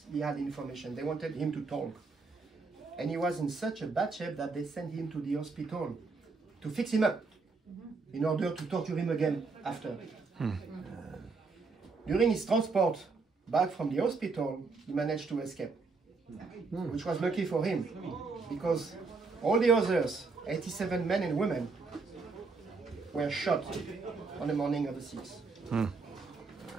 had information. They wanted him to talk. And he was in such a bad shape that they sent him to the hospital to fix him up in order to torture him again after. During his transport back from the hospital, he managed to escape, which was lucky for him, because all the others, 87 men and women, were shot on the morning of the 6th.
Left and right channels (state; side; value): quieter; left; 4.3 dB